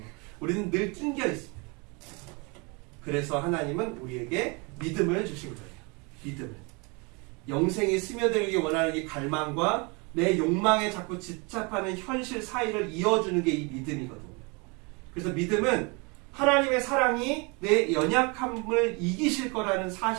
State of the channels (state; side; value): quieter; left; 30.2 dB